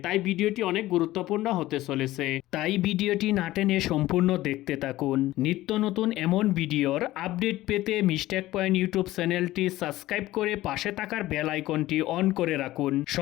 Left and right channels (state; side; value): quieter; right; 16.4 dB